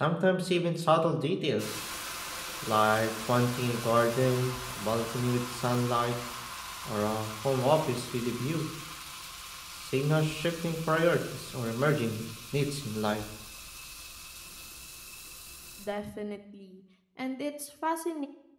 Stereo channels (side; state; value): both; identical; correlation 1.00